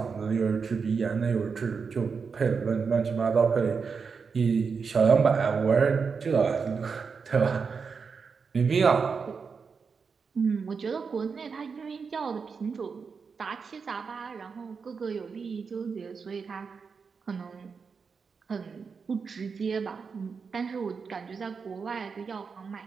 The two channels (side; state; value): left; quieter; 5.5 dB